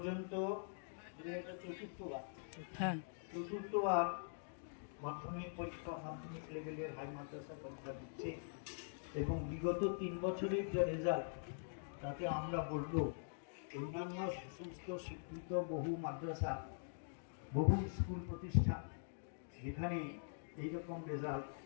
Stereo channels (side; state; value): right; silent; digital silence